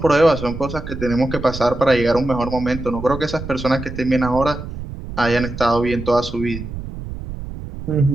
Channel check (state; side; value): noise; right; rumble, 9 dB below the sound